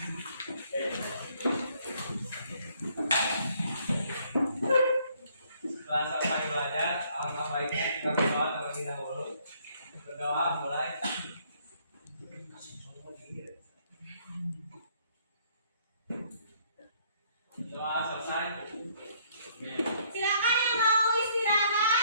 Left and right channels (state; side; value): inverted; both; correlation -0.65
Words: Setelah selesai belajar, Alangkah baiknya kita berdoa terlebih dahulu. Berdoa mulai. Doa selesai. Silakan